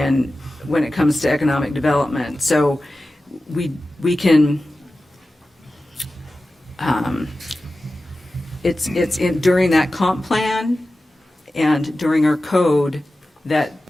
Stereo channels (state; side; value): normal; both; correlation 0.95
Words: it comes to economic development. So we can it's during that comp plan and during our code